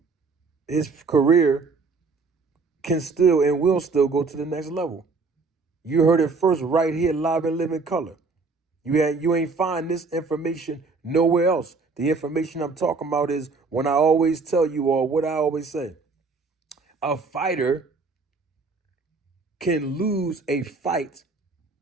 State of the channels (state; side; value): quieter; left; 4.2 dB